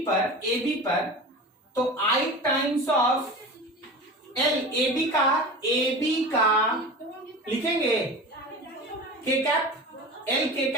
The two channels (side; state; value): both; normal; correlation 0.33